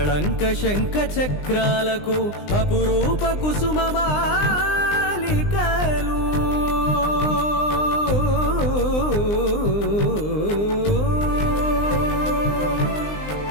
శంఖ చక్రాలకు అపురూప కుసుమమాలికలు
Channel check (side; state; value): right; late; 20 ms